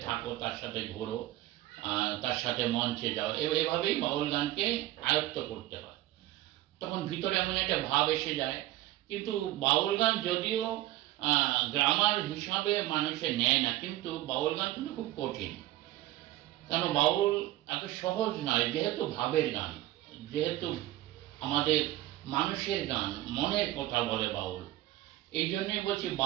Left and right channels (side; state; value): left; quieter; 15.7 dB